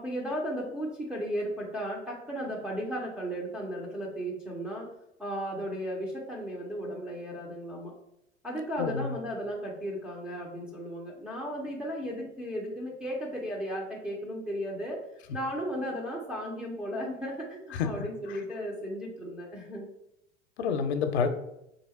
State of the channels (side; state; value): both; normal; correlation 0.46